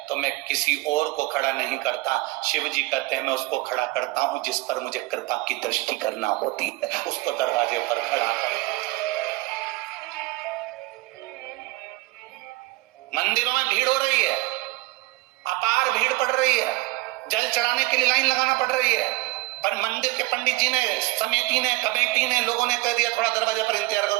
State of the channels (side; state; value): left; quieter; 20.8 dB